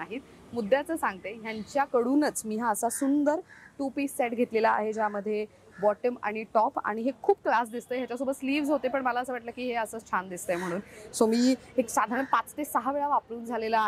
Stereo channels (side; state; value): both; identical; correlation 1.00